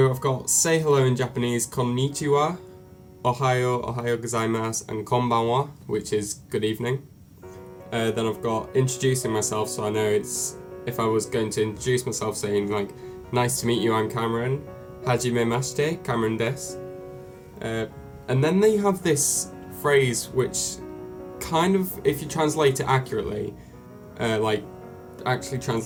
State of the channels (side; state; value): both; identical; correlation 1.00